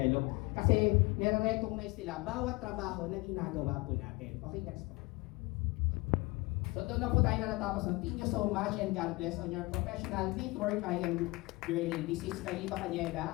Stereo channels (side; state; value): right; quieter; 23.7 dB